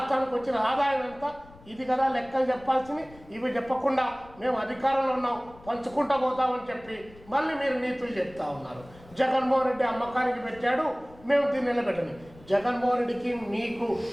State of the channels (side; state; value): left; noise; rumble, 22 dB below the sound